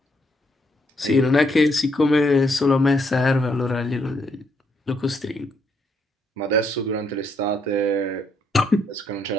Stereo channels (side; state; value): both; normal; correlation 0.74